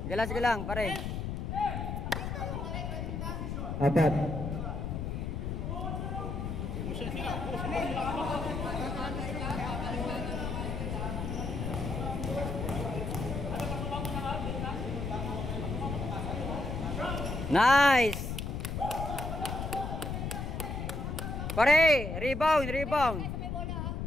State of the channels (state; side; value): noise; left; rumble, 3 dB below the sound